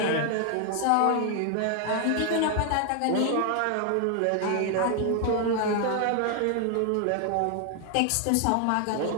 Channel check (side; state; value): both; different; correlation 0.00